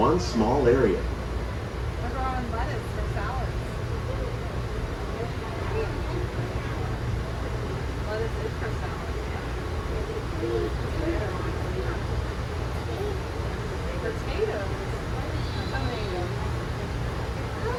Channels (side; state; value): both; identical; correlation 1.00